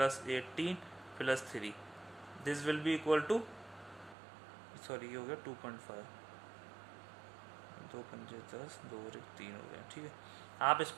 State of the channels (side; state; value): left; drops out; at 4.2 s